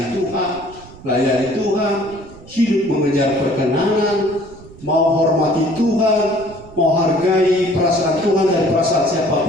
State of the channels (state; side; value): noise; right; rumble, 20 dB below the sound